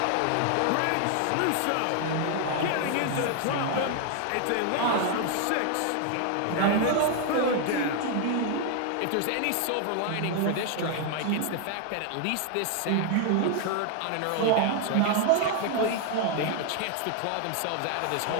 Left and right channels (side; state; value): both; different; correlation 0.00